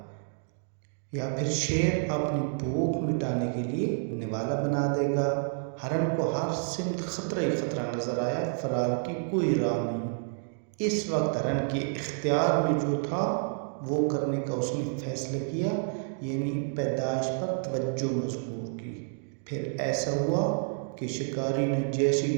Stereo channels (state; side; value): silent; left; digital silence